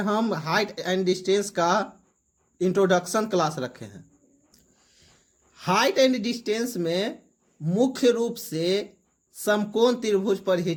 हाइट एंड डिस्टेंस का इंट्रोडक्शन क्लास रखे हैं। हाइट एंड डिस्टेंस में मुख्य रूप से समकोण त्रिभुज पर ही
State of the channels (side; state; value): both; identical; correlation 1.00